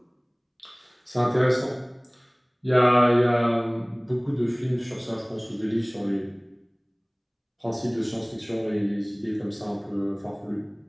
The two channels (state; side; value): identical; both; correlation 1.00